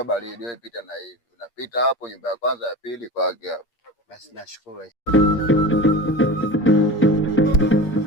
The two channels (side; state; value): right; late; 8.5 ms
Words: baridi, wewe pita na hivi, unapita hapo nyumba ya kwanza ya pili kwake hapo. Basi nashukuru.